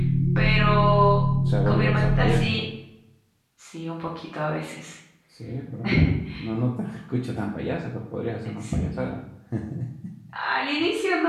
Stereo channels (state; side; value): identical; both; correlation 1.00